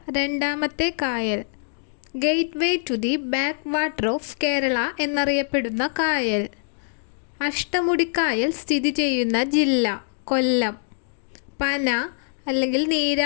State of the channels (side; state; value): right; silent; digital silence